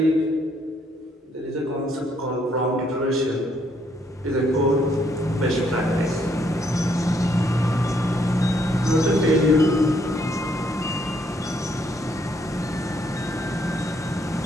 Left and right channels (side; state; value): both; normal; correlation 0.71